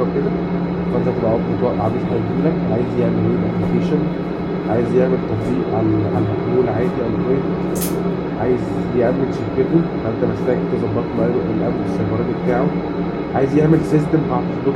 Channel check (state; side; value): identical; both; correlation 1.00